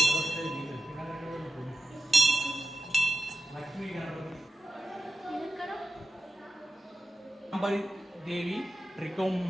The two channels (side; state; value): both; normal; correlation 0.90